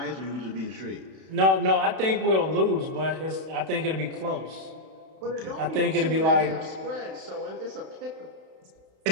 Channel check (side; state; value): left; late; 31 ms